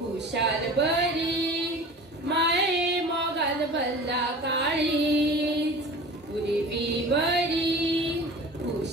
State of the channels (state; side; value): normal; both; correlation 0.39